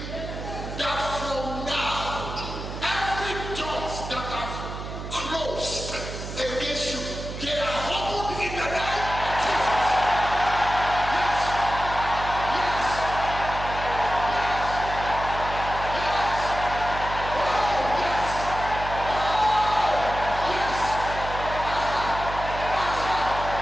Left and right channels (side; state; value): right; noise; hum, 8 dB below the sound